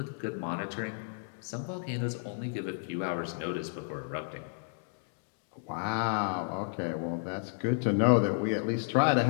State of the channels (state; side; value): silent; right; digital silence